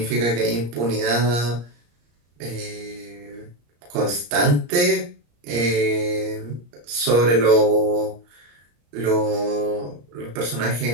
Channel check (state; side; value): late; left; 34 ms